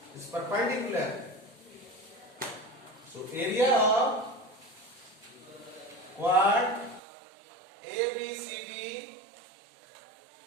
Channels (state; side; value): drops out; left; at 7.0 s